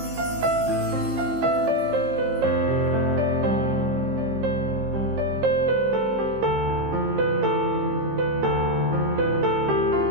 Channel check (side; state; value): left; late; 15 ms